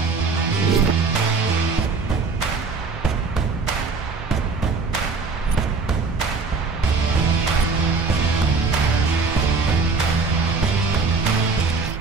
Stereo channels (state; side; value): quieter; left; 4.4 dB